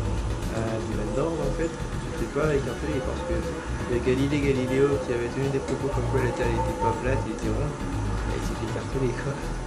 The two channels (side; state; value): both; identical; correlation 1.00